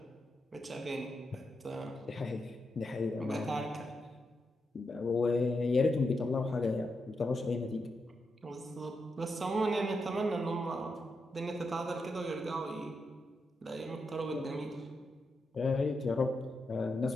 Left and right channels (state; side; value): normal; both; correlation 0.85